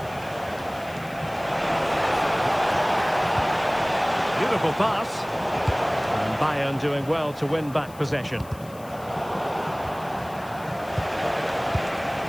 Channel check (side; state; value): left; noise; hiss, 22 dB below the sound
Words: Beautiful pass. And Bayern doing well to win back possession.